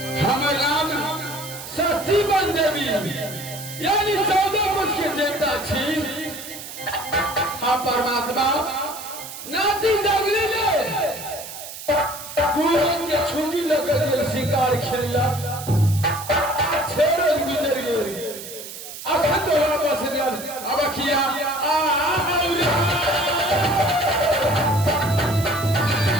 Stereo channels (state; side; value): noise; right; hiss, 11 dB below the sound